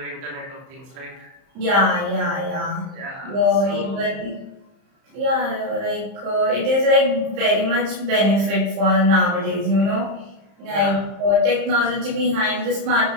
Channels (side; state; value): left; late; 30 ms